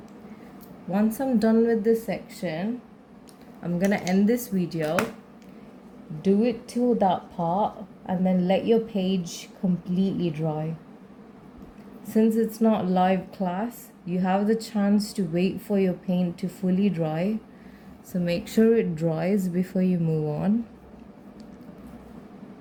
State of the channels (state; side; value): identical; both; correlation 1.00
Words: Once I'm done with this section, I'm gonna end this video. Do it till that part and then let your page completely dry. Since it's not live class, you have the chance to wait for your paint to fully dry. So make sure it dries before you move on.